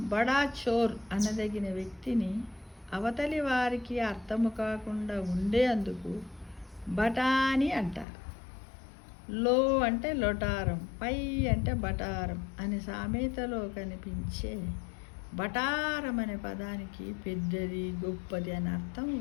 బడా చోర్ అనదగిన వ్యక్తిని అవతలి వారికి అర్థము కాకుండా ఉండేందుకు బఠానీ అంటారు. లో అంటే లొటారం, పై అంటే బటారం అనే సామెతలో కనిపించే బటారం అనే పదానికి పెద్దది, గొప్పది అని అర్థం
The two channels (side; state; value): right; drops out; at 8.1 s